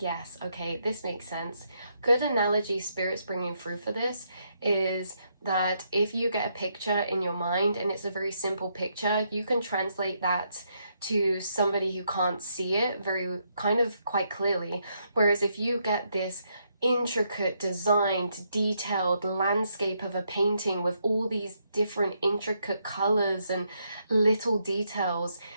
yes, okay, this makes sense, good analogy Spirit's bringing through for this is that if you get a picture in your mind and it's a very simple picture, you can translate that to somebody who can't see it very kind of quite clearly. Whereas if you get this intricate, designed, detailed landscape of a painting with all these different intricate colors and little details,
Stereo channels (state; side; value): inverted; both; correlation -0.77